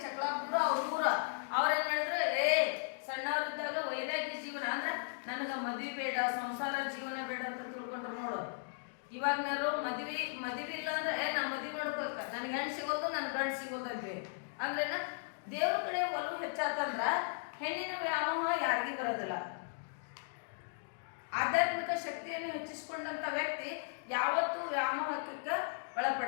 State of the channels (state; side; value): silent; right; digital silence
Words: ಚಕ್ಲಾಪುರ ಅವ್ರ ಊರ. ಅವ್ರೇನ್ ಮಾಡಿದ್ರು, ಸಣ್ಣವರಿದ್ದಾಗ ವೈರಾಗ್ಯ ಜೀವನ ಅಂದ್ರೆ ನನಗ ಮದ್ವಿ ಬೇಡ, ಸಂಸಾರ ಜೀವನ ಬೇಡ ಅಂತ ತಿಳ್ಕೊಂಡ್ರು ನೋಡು. ಇವಾಗನಾರು ಮದ್ವಿ ಇಲ್ಲ ಅಂದ್ರೆ ನಾ ಮದ್ವಿ ಮಾಡ್ಬೇಕ, ನನ್ಗೆ ಹೆಣ್ಣು ಸಿಗೋದು ನನ್ ಗಂಡು ಸಿಗೋದು ಅಂತೆ. ಅಂದ್ರೇನ ದೇವ್ರ ಕಡೆ ಒಲವು ಹೆಚ್ಚಾತಂದ್ರ ಹೆಣ್ಣಿನ ವ್ಯಾಮೋಹ ಯಾರಿಗೂ ಬರೋದಿಲ್ಲ. ಆಧ್ಯಾತ್ಮಿಕ ಶಕ್ತಿಯನ್ನು ಹೆಚ್ಚಿಸಿಕೊಂಡಂತ ವ್ಯಕ್ತಿ ಯಾವತ್ತೂ ವ್ಯಾಮೋಹಕ್ಕೆ